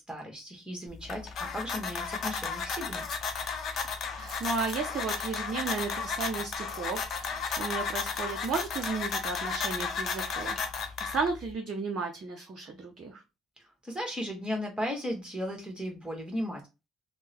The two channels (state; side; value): normal; both; correlation 0.56